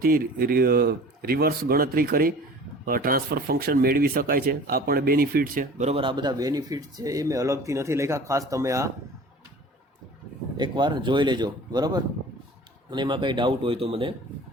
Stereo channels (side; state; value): both; normal; correlation 0.43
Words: રિવર્સ ગણતરી કરી ટ્રાન્સફર ફંક્શન મેળવી શકાય છે. આ પણ બેનિફિટ છે બરાબર. આ બધા બેનિફિટ છે એ મેં અલગથી નથી લખ્યા, ખાસ તમે આ એકવાર જોઈ લેજો બરાબર. અને એમાં કંઈ ડાઉટ હોય તો મને